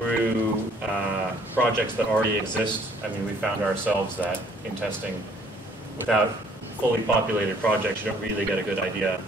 projects that already exist. I mean, we found ourselves that in testing, without fully populated projects, you don't really get a good idea.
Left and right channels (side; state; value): both; normal; correlation 0.61